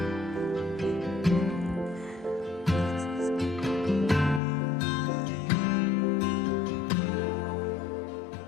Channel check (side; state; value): right; drops out; at 4.4 s